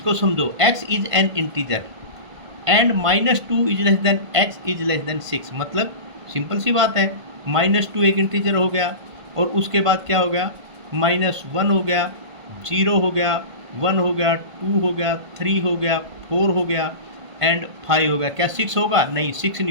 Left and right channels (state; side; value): late; left; 1.5 ms